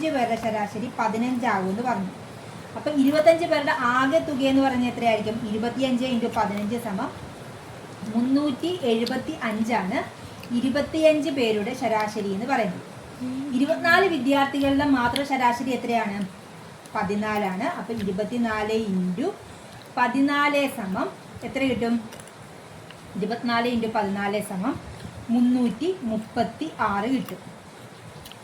പേരുടെ ശരാശരി 15 ആവുമെന്ന് പറഞ്ഞു. അപ്പം 25 പേരുടെ ആകെ തുക എന്ന് പറഞ്ഞാൽ എത്രയായിരിക്കും? 25 × 15 = 375 25 പേരുടെ ശരാശരി എന്ന് പറയുന്നത്. 24 വിദ്യാർത്ഥികളുടെ മാത്രം ശരാശരി എത്രയാണ്? 14. അപ്പം 24 × 14 എത്ര കിട്ടും? 24 × 14 336 കിട്ടും.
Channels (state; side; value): identical; both; correlation 1.00